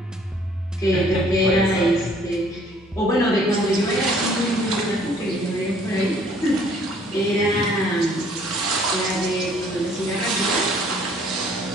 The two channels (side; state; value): both; normal; correlation 0.59